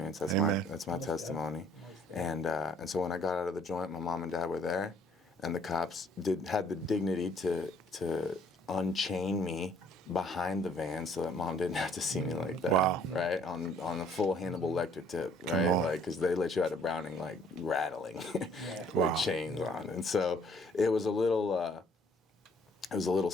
That's Amen. my testimony. And so when I got out of the joint, my mom and dad were there, and the cops had the dignity to unchain me behind the van so that mom didn't have to see me like that. Wow. Right? On a full Hannibal Lecter tip, right? Like, because they let you out of Browning like rattling with chains on. And so it was a little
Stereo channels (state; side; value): normal; both; correlation 0.61